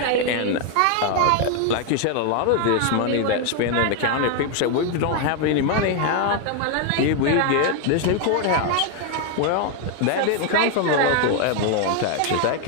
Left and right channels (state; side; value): different; both; correlation 0.01